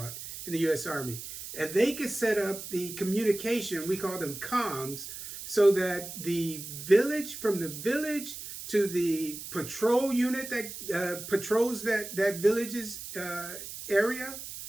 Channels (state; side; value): noise; right; hiss, 10 dB below the sound